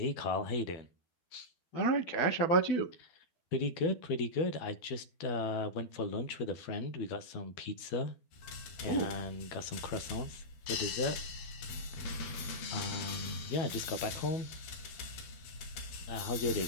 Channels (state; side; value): late; right; 12 ms